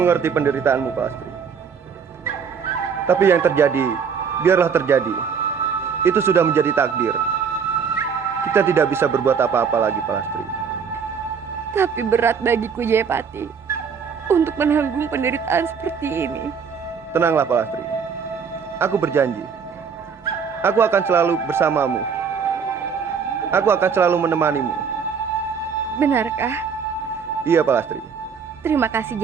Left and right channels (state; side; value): quieter; left; 6.4 dB